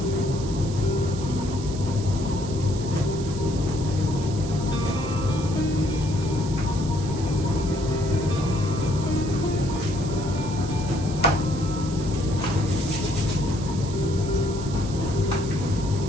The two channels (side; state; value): right; noise; hiss, 14 dB below the sound